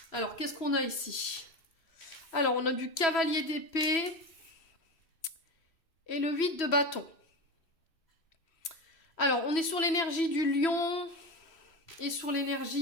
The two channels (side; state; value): right; late; 3.0 ms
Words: alors qu'est-ce qu'on a ici? Alors, on a du cavalier d'épée et le 8 de bâton. Alors, on est sur l'énergie du lion, Et sur